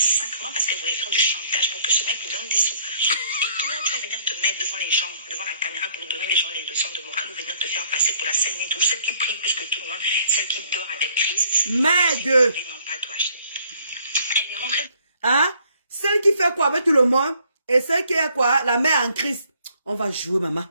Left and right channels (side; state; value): both; inverted; correlation -0.63